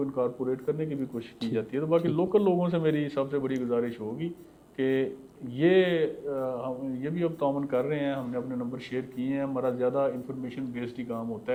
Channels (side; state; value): both; identical; correlation 1.00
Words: इनकॉर्पोरेट करने की भी कोशिश की जाती है। तो बाकी लोकल लोगों से मेरी सबसे बड़ी गुजारिश होगी कि ये भी अब ताउन कर रहे हैं, हमने अपने नंबर शेयर किए हैं, हमारा ज़्यादा इंफॉर्मेशन बेस्ड ही काम होता